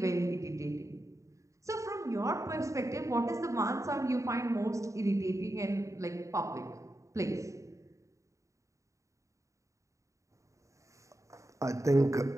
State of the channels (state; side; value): late; left; 0.15 ms